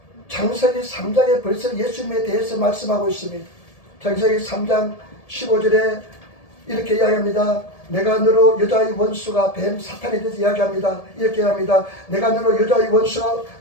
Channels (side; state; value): right; late; 1.7 ms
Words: 창세기 3장에 벌써 예수님에 대해서 말씀하고 있습니다. 창세기 3장 15절에 이렇게 이야기합니다. 내가 너로 여자의 원수가 뱀 사탄에 대해서 이야기합니다. 이렇게 합니다. 내가 너로 여자의 원수가